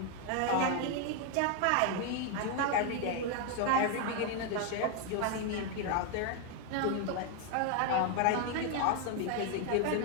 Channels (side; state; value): both; different; correlation 0.01